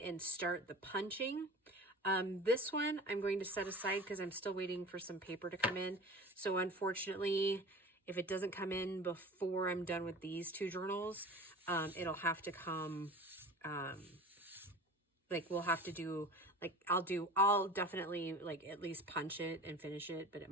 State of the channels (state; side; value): normal; both; correlation 0.38